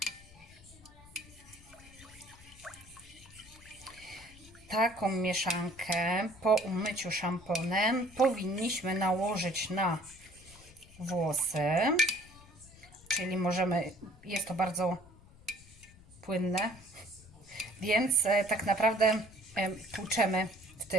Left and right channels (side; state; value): left; noise; rumble, 22 dB below the sound